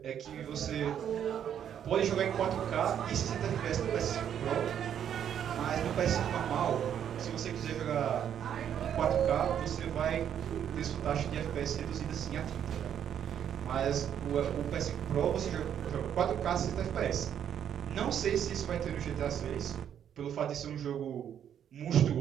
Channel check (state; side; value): quieter; left; 9.3 dB